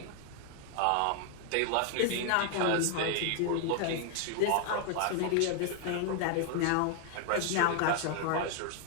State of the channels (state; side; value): different; both; correlation 0.00